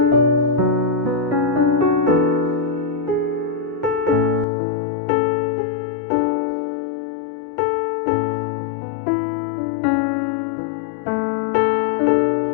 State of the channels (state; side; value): drops out; right; at 4.5 s